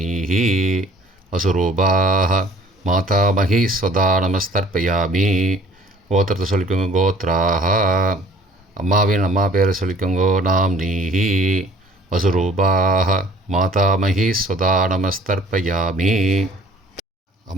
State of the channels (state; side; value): normal; both; correlation 0.53